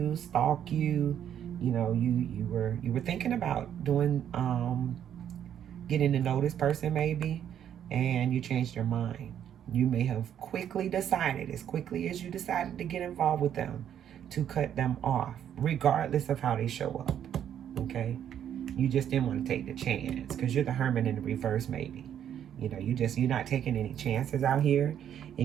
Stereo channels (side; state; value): left; quieter; 9.7 dB